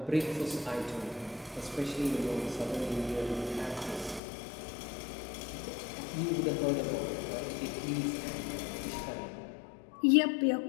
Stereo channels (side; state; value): right; drops out; at 4.2 s